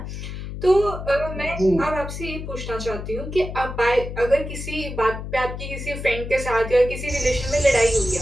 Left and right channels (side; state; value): left; noise; hum, 8 dB below the sound